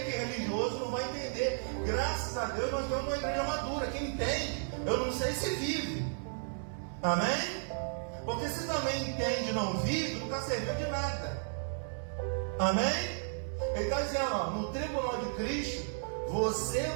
que religioso não vai entender. Graças a Deus nós temos uma igreja madura. Quem entende, eu não sei se vive. Amém? Porque se também entende e não vive, não está servindo de nada. Amém? Ele está dizendo, ó, no tribunal de Cristo, você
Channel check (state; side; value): silent; left; digital silence